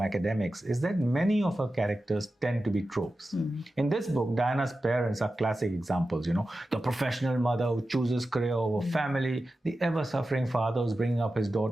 is that many of her characters tend to be tropes. In this book, Diana's parents are classic examples, the professional mother who chooses career over family, the ever-suffering father who's bringing up his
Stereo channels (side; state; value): both; normal; correlation 0.93